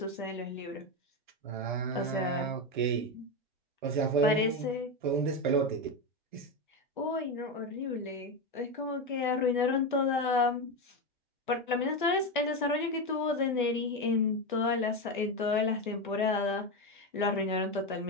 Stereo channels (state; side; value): normal; both; correlation 0.13